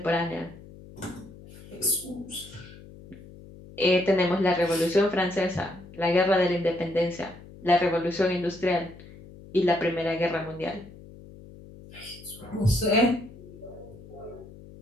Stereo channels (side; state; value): left; noise; hum, 19 dB below the sound